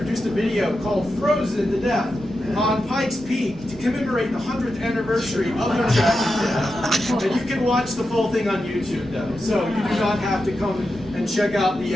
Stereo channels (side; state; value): both; normal; correlation 0.89